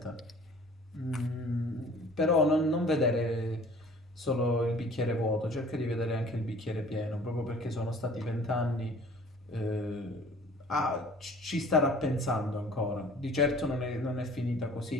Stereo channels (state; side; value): normal; both; correlation 0.50